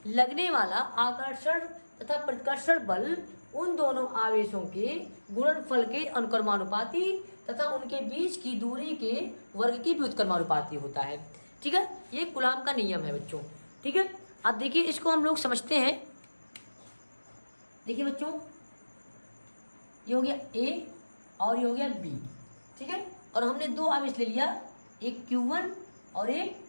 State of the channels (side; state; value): both; inverted; correlation -1.00